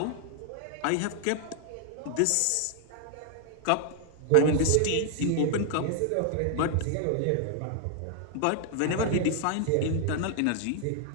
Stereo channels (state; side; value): different; both; correlation 0.00